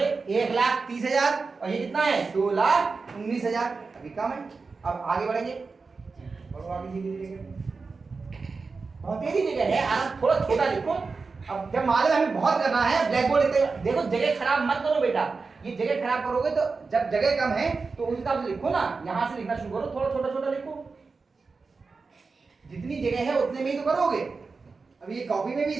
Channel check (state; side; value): quieter; left; 4.4 dB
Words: 1,30,000, और ये कितना है? 2,19,000। अभी कम है। अब आगे बढ़ेंगे, बढ़ो आगे धीरे धीरे, बहुत तेजी जगह है, आराम, थोड़ा छोटा लिखो। अब जब मालूम हमें बहुत करना है, ब्लैक बोर्ड देखो, जगह खराब मत करो बेटा। ये जगह खराब करोगे तो जब जगह कम है तो उस हिसाब से लिखो ना, यहाँ से लिखना शुरू करो, थोड़ा छोटा छोटा लिखो। जितनी जगह है उतने में ही तो करोगे। अब ये कॉपी में भी